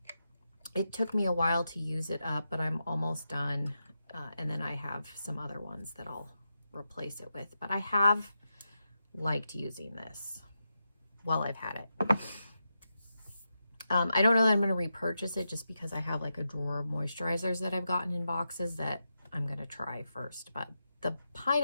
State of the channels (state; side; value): inverted; both; correlation -0.87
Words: It took me a while to use it up, but I'm almost done. And then I have some other ones that I'll replace it with. But I have liked using this while I've had it. I don't know that I'm going to repurchase it just because I have like a drawer of moisturizers that I've gotten in boxes that I'm going to try first. But the